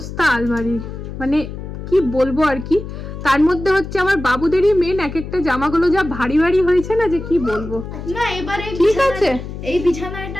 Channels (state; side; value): noise; left; hum, 9 dB below the sound